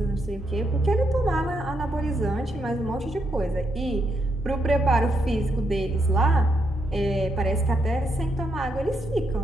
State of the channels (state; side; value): normal; both; correlation 0.79